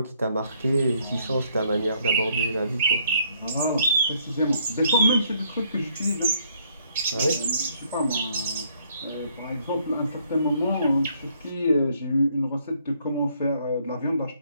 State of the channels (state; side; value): inverted; both; correlation -0.68